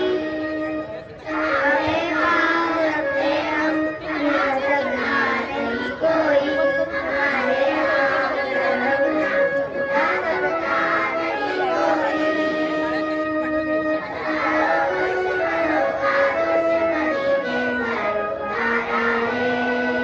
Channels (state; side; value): identical; both; correlation 1.00